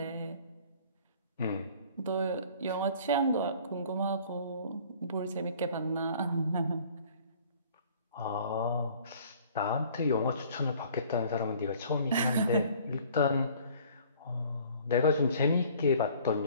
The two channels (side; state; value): both; inverted; correlation -0.53